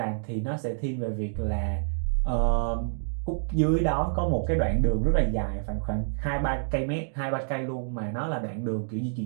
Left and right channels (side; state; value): left; silent; digital silence